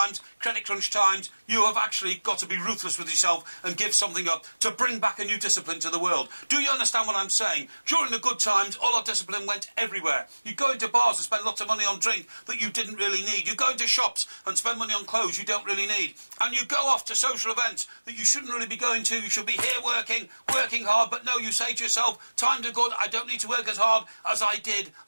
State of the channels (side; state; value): both; inverted; correlation -1.00